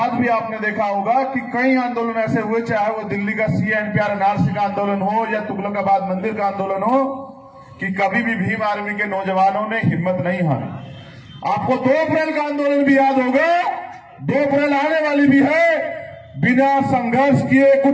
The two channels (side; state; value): both; identical; correlation 1.00